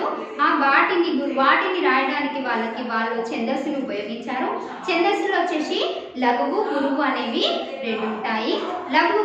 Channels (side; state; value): both; identical; correlation 1.00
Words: వాటిని రాయడానికి వాళ్ళు ఛందస్సులు ఉపయోగించారు. ఛందస్సులు వచ్చేసి లఘువు గురువు అనేవి 2 ఉంటాయి. లఘువు